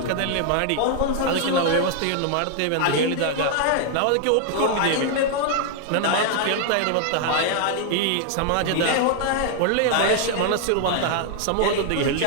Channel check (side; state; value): both; different; correlation 0.00